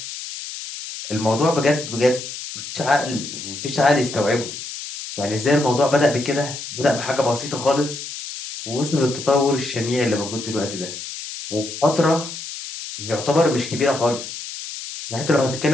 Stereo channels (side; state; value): left; noise; hiss, 9 dB below the sound